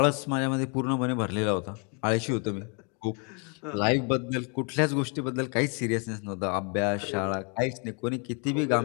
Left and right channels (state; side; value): quieter; right; 36.9 dB